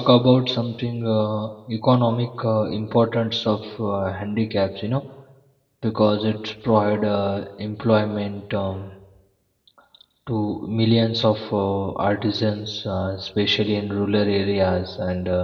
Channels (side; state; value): both; identical; correlation 1.00